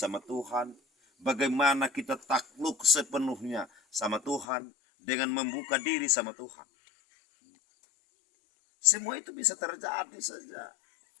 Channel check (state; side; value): drops out; right; at 4.5 s